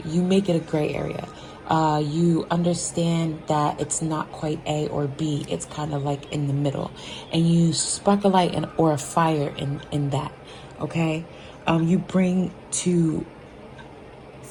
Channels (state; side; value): identical; both; correlation 1.00